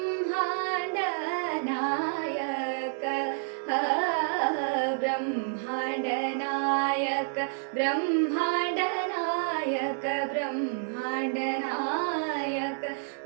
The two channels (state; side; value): silent; left; digital silence